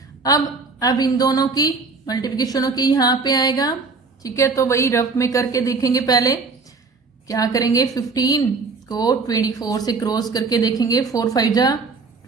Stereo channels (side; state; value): left; quieter; 4.3 dB